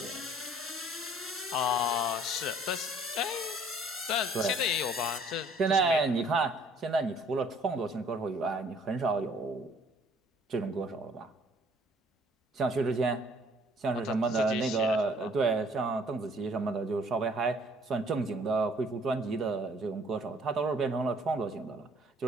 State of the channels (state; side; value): normal; both; correlation 0.58